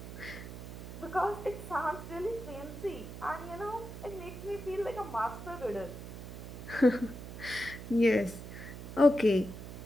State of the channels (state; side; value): noise; right; hum, 10 dB below the sound